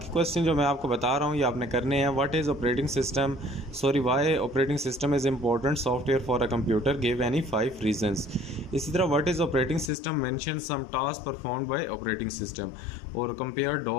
क्वेश्चन जो मैं आपको बता रहा हूँ ये आपने करने हैं। What is operating system, sorry why operating system is important software for a computer, give any 5 reasons. इसी तरह what is operating system, mention some task performed by operating system और compare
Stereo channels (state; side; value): drops out; right; at 9.9 s